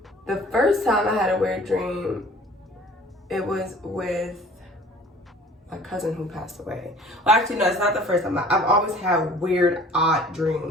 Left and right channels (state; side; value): normal; both; correlation 0.49